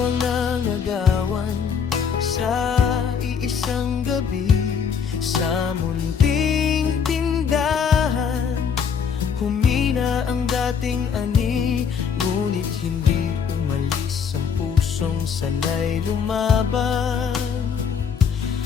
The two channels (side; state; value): right; quieter; 6.7 dB